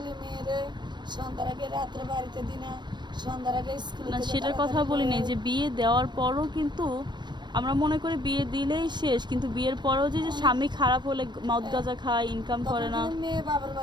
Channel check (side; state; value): left; late; 0.22 ms